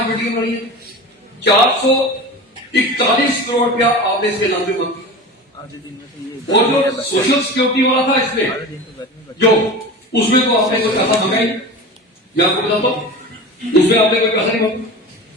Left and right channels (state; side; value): normal; both; correlation 0.31